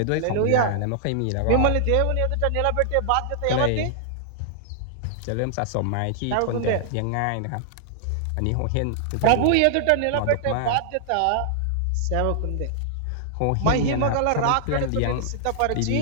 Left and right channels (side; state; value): both; different; correlation -0.01